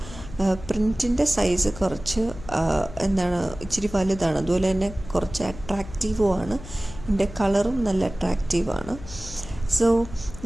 പ്രിൻറ്റിൻ്റെ സൈസ് കുറച്ച് ഇച്ചിരി വലുതാണ്. അതുപോലെ തന്നെ കുറച്ച് അട്രാക്റ്റീവുമാണ്. ഇതിൻ്റെ കളറും നല്ല അട്രാക്റ്റീവാണ്. സോ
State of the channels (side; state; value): left; noise; hum, 14 dB below the sound